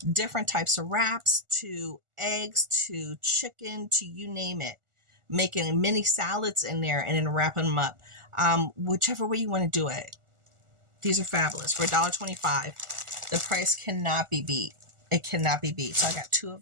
different types of wraps to eggs to chicken to you name it. Making mini salads in there and then wrapping them up. Whichever way you want to do it. These are fabulous. For $1.25, the price cannot be beat. It cannot be beat. So I got 2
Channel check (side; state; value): left; late; 1.4 ms